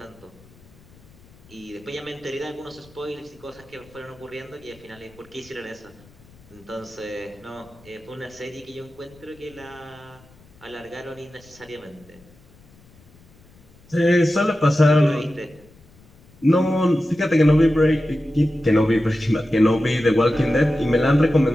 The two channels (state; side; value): noise; left; rumble, 27 dB below the sound